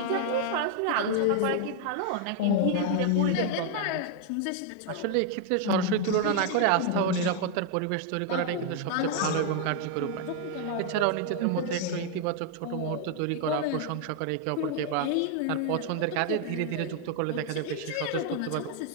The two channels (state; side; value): different; both; correlation 0.00